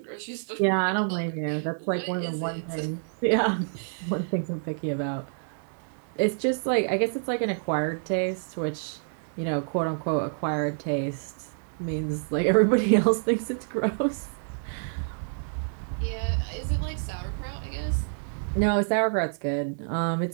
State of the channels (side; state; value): left; silent; digital silence